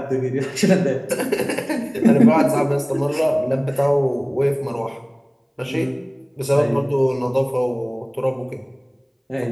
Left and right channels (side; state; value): both; identical; correlation 1.00